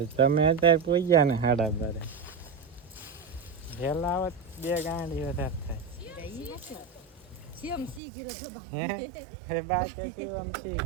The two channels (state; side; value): drops out; left; at 8.0 s